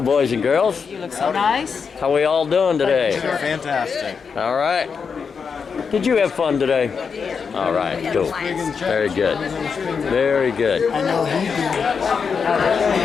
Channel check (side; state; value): right; quieter; 5.9 dB